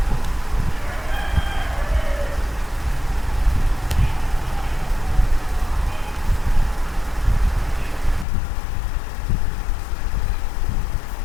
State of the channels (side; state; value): right; drops out; at 8.2 s